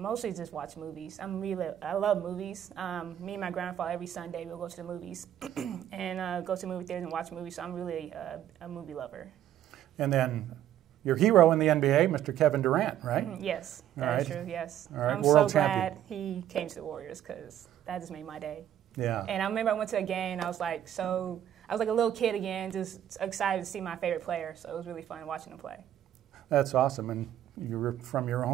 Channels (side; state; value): left; quieter; 11.3 dB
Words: mostly just watch movies. I love movies. Me and my grandfather, every Sunday, we'll go to the movies and go to movie theaters and watch movies. So I'm really a movie lover. And then your hero in the NBA, Mr. Kevin Durant, right? Yes, that's true, yes. All right. I'm World so glad champion. he came to the Warriors because that just made my day. Yeah. And I remember I went to a game, and I was like a little kid again, just excited to see my favorite player. So it was really fun watching him play. That's awesome. And you were from your